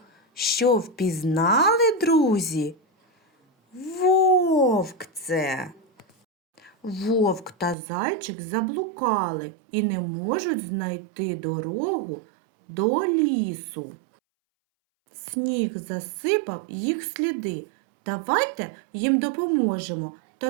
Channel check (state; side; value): drops out; left; at 7.8 s